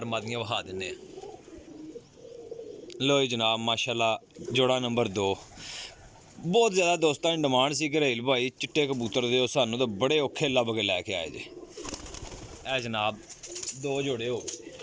मादियां वहा दिन्ने आ। लो जी जनाब माशाल्लाह जोड़ा नंबर 2। बहुत ज़्यादा दोस्तों की डिमांड सी घरेल भाई चिट्टे कबूतर दो, सानू तो बड़े औखे लभ के लैके आए जे। ए जनाब 2 जोड़े हो गए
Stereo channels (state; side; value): identical; both; correlation 1.00